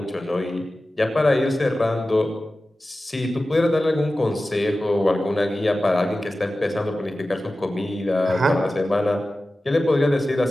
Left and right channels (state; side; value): normal; both; correlation 0.95